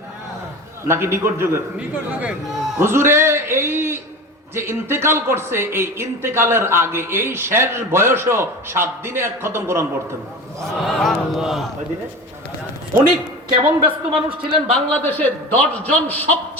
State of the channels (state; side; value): normal; both; correlation 0.32